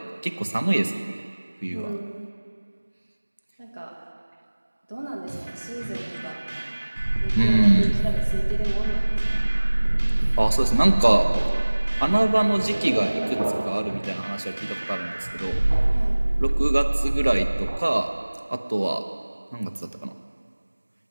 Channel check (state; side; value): inverted; both; correlation -1.00